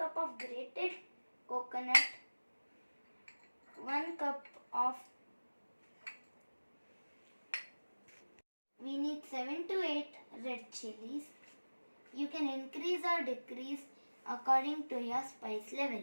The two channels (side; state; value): both; inverted; correlation -1.00